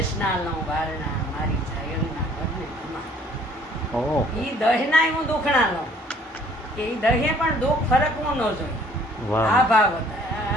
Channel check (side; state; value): both; normal; correlation 0.57